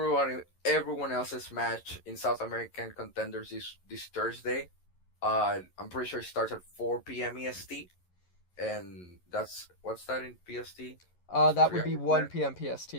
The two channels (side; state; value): right; late; 11 ms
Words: else's match in South American Contenders this Thursday. I'm pretty sure it starts at 4 p.m. EST, and what's that in PST? That would be 1 p.m. PST.